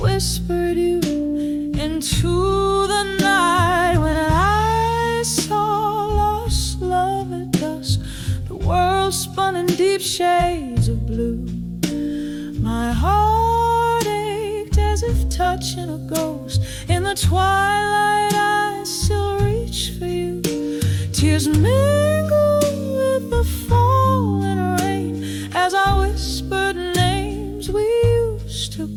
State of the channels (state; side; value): identical; both; correlation 1.00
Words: you into the night. When I saw lost love at dusk, the world spun in deep shades of blue. My heart ached as if touching a ghost. In the twilight I still reach for you. Tears mingle with the falling rain as I whispered names we used to